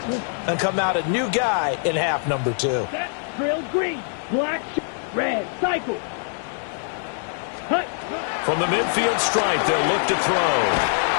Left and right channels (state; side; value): silent; right; 63 dB below the other